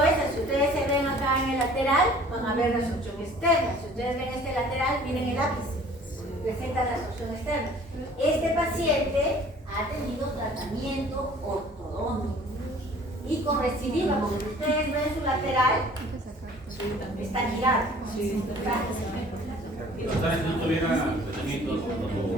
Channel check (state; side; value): normal; both; correlation 0.51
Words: esa, si ustedes se ven acá en el lateral, van a ver la absorción externa. Si ustedes ven este lateral, miren el ápice, presenta la absorción externa. Este paciente ha tenido tratamiento ortodóntico y con recidiva, porque si ustedes ven su lateral, está girado. Si no tuviera tratamientos,